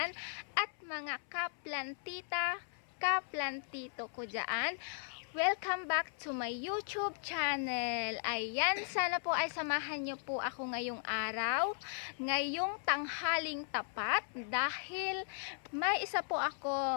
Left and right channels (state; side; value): silent; right; 53 dB below the other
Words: at mga kaplantita, kaplantito ko dyan. Welcome back to my YouTube channel. Ayan, sana po ay samahan nyo po ako ngayong araw, ngayong tanghaling tapat, dahil may isa po